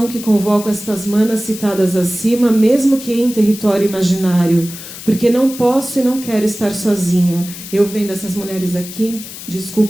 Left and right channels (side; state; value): left; noise; hiss, 12 dB below the sound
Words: que convoco estas manas citadas acima, mesmo que em território imaginário, porque não posso e não quero estar sozinha. Eu vendo essas mulheres aqui,